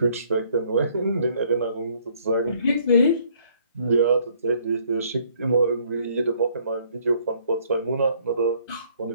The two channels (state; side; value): inverted; both; correlation -0.63